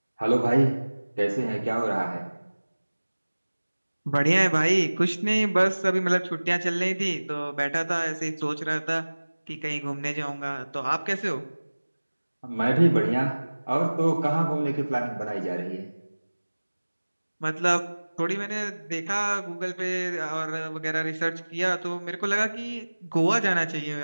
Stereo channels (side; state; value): both; inverted; correlation -1.00